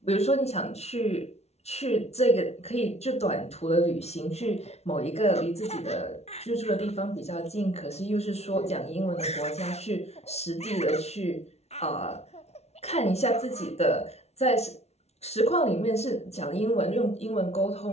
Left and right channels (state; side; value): late; right; 0.31 ms